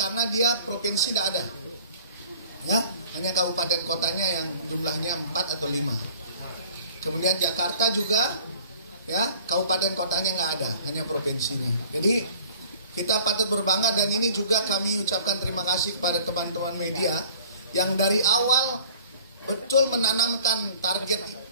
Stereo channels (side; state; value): both; inverted; correlation -0.51